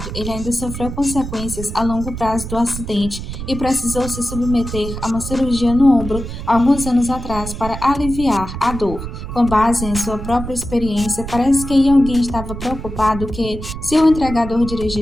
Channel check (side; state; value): right; noise; rumble, 8 dB below the sound